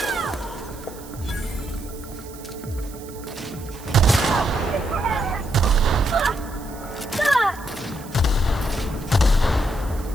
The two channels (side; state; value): right; noise; hiss, 19 dB below the sound